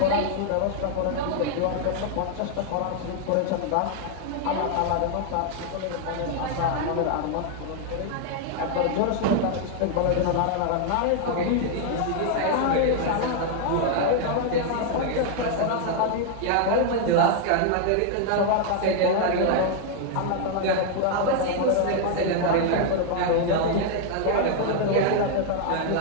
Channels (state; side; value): different; both; correlation 0.00